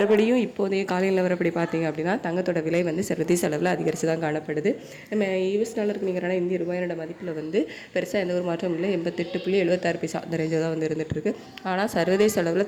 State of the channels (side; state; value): both; identical; correlation 1.00